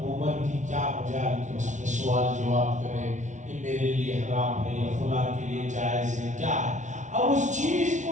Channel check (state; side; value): late; left; 0.36 ms